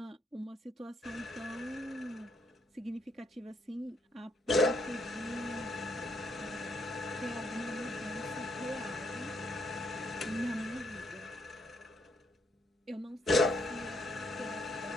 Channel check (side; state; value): both; normal; correlation 0.73